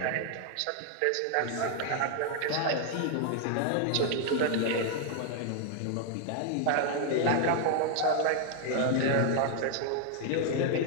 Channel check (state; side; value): different; both; correlation 0.00